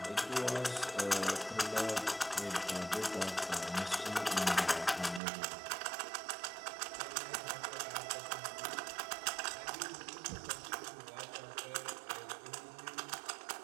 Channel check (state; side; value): drops out; left; at 5.2 s